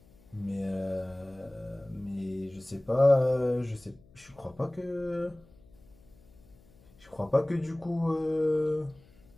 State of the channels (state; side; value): noise; left; hum, 27 dB below the sound